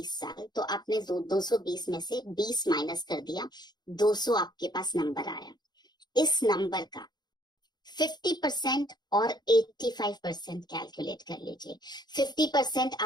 साल, तो आपने 220 में से 20 माइनस कर दिया, 200 आपके पास नंबर आया। इस नंबर का 50% और 85% कैलकुलेट कर लीजिए। 50%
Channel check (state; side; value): late; right; 0.20 ms